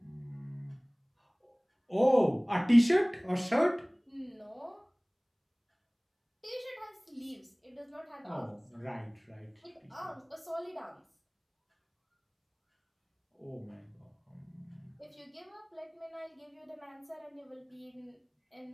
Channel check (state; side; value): identical; both; correlation 1.00